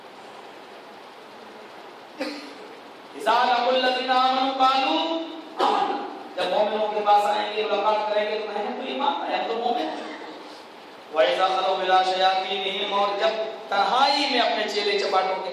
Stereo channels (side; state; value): both; identical; correlation 1.00